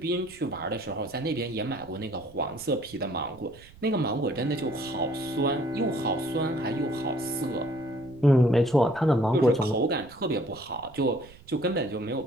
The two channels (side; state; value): right; noise; rumble, 23 dB below the sound